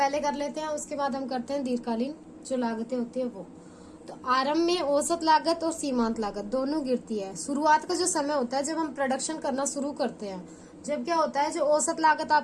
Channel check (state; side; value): identical; both; correlation 1.00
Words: कर लेते हैं, उसके बाद हम करते हैं दीर्घकालीन जो लागतें होती है वो। तो आरंभ में औसत लागत और सीमांत लागत दोनों गिरती है। शुरुआत का जो समय होता है जब हम प्रोडक्शन करना शुरू करते हैं, जब क्या होता है, जो औसत लागत